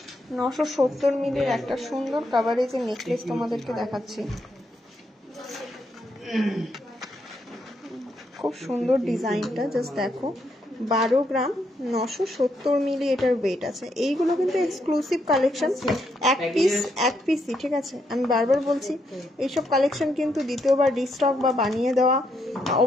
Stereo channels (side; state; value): both; normal; correlation 0.77